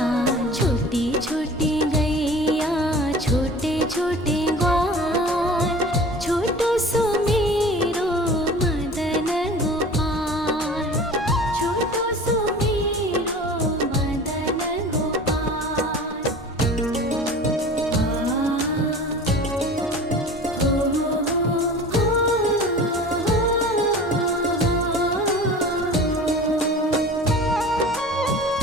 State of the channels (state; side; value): normal; both; correlation 0.40